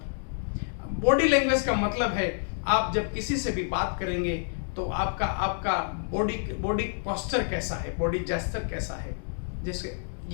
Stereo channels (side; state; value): right; silent; digital silence